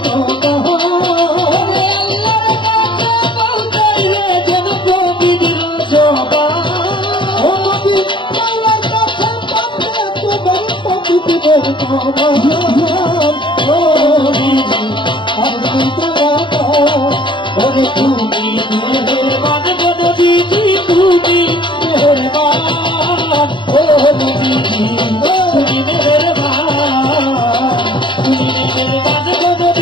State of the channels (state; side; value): late; right; 0.23 ms